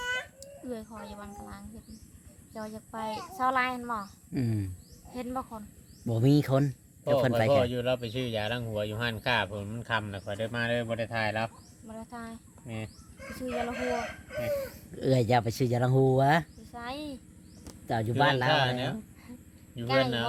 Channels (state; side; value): identical; both; correlation 1.00